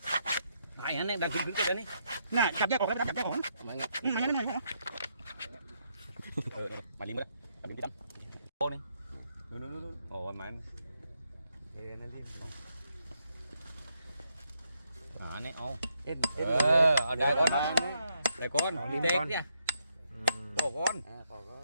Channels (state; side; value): inverted; both; correlation -0.78